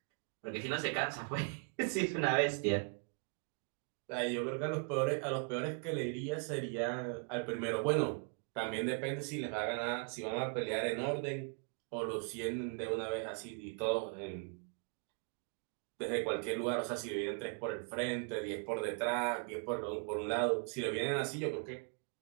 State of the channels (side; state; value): left; quieter; 39.9 dB